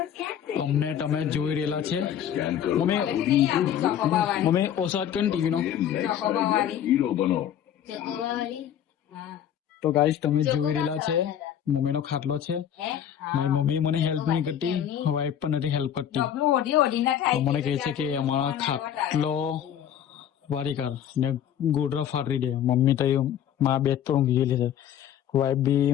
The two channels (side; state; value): right; quieter; 9.9 dB